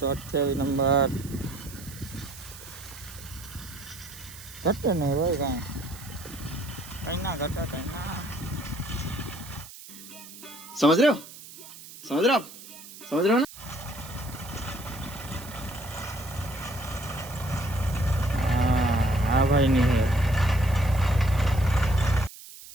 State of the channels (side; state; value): right; noise; hiss, 16 dB below the sound